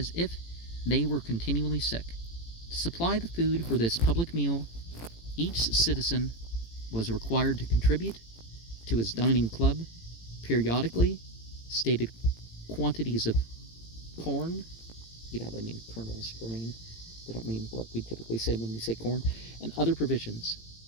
if they were continually sick. To supply the food for this public meal, each citizen was required to contribute to his dining club periodically stated quantities of corn. They mean kernels, grain. They don't mean what we typically say when we say corn, and other provisions.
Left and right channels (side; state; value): right; late; 18 ms